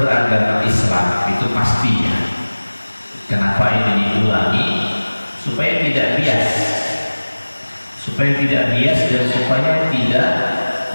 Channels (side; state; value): both; inverted; correlation -1.00